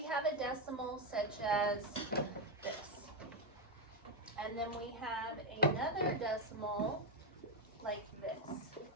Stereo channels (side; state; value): both; normal; correlation 0.07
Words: have a decimal such as this, and then we have another decimal like this.